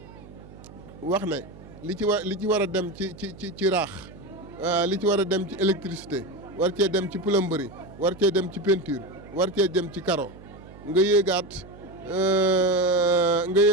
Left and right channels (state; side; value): noise; right; hum, 19 dB below the sound